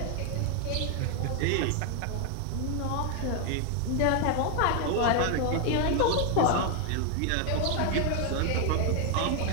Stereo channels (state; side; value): different; both; correlation 0.01